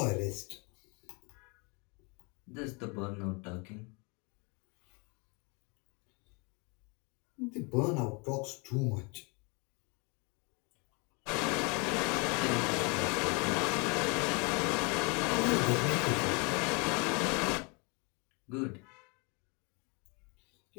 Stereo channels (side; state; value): right; quieter; 31.5 dB